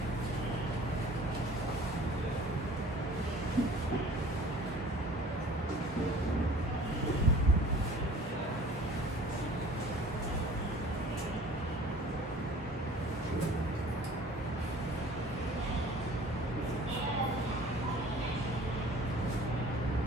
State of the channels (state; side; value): normal; both; correlation 0.47